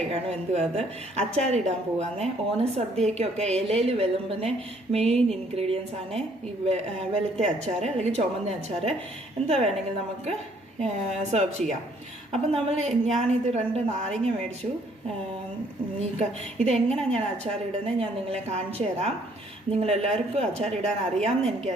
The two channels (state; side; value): normal; both; correlation 0.64